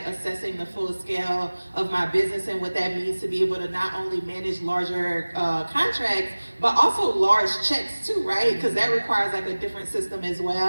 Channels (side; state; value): both; inverted; correlation -1.00